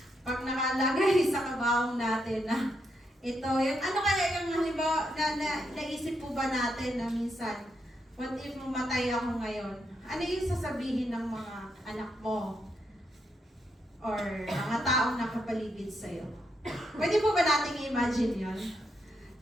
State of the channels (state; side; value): normal; both; correlation 0.80